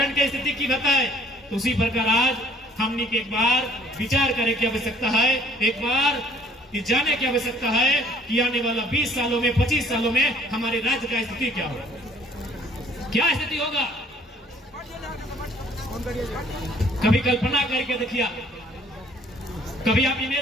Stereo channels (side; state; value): both; normal; correlation 0.59